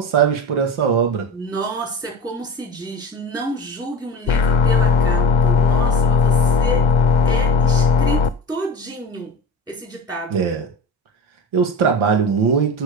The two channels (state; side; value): normal; both; correlation 0.29